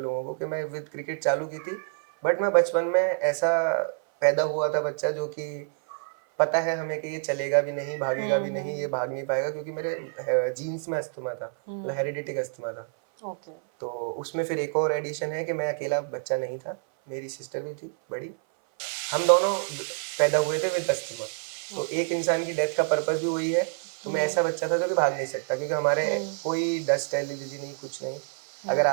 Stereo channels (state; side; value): silent; left; 56 dB below the other